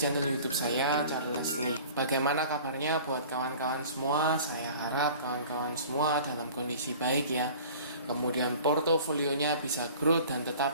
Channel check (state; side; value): inverted; both; correlation -0.45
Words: channel YouTube saya, Charles Leslie. Bagaimana kabarnya buat kawan-kawan semua? Saya harap kawan-kawan semua dalam kondisi baik ya. Kemudian portofolionya bisa growth dan